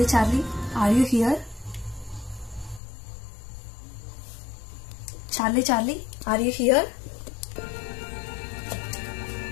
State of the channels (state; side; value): drops out; right; at 2.8 s